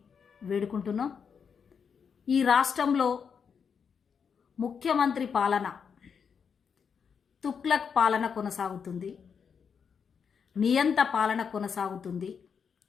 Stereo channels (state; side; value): quieter; right; 6.6 dB